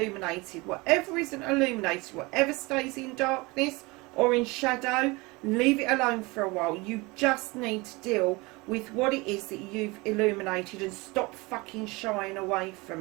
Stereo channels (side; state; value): left; quieter; 24.4 dB